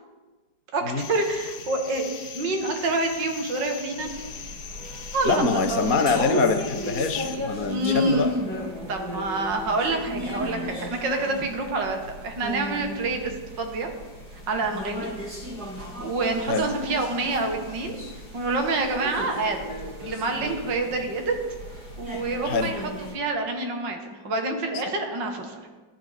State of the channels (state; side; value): late; left; 4.8 ms